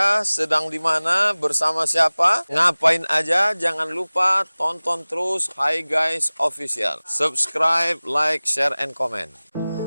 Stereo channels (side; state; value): both; inverted; correlation -0.99